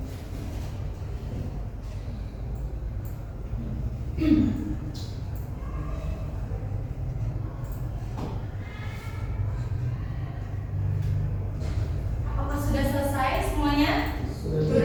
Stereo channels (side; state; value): both; identical; correlation 1.00